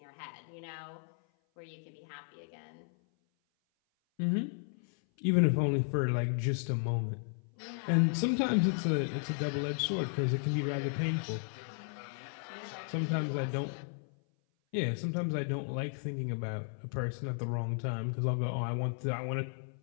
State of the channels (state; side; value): silent; right; 55 dB below the other